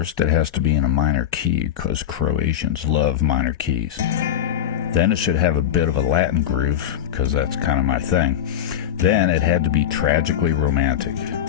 it has to be in a minor key, because Croatians love minor keys. Then it should have a bit of a Latin groove, because that's kind of my thing. Then it had to be tragically romantic.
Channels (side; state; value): right; quieter; 10.2 dB